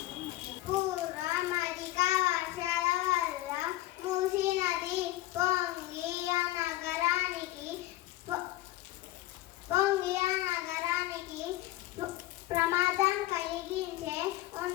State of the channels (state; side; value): quieter; right; 16.1 dB